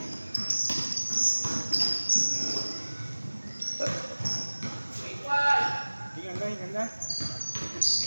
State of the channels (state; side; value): inverted; both; correlation -1.00